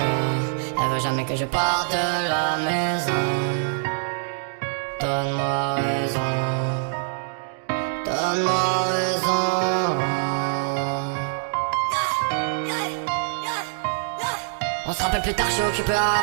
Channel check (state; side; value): silent; left; digital silence